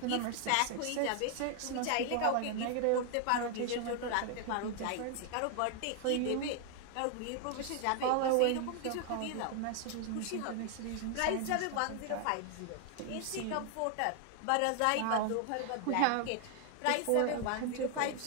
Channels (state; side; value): different; both; correlation 0.00